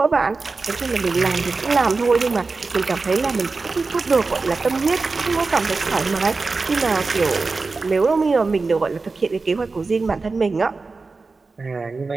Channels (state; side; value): quieter; left; 4.0 dB